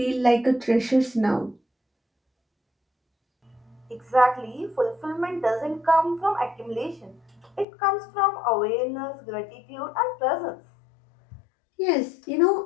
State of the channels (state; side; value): drops out; right; at 7.7 s